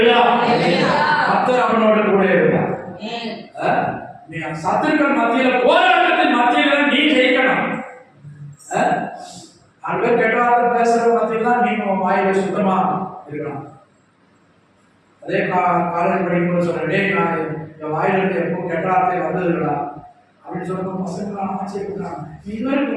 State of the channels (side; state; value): both; identical; correlation 1.00